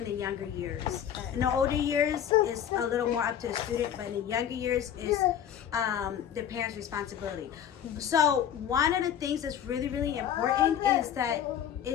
the younger years. In the older years, it's a little more up to the student, but in the younger years, it's the parent's responsibility. So one of the things that's really, really important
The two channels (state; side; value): quieter; right; 9.5 dB